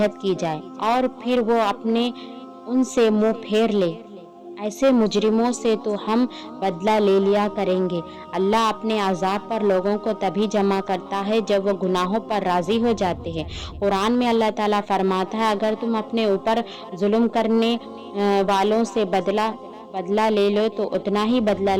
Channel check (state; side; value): identical; both; correlation 1.00